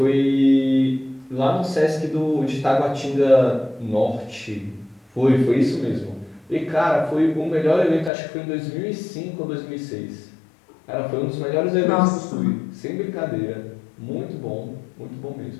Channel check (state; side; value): drops out; right; at 8.1 s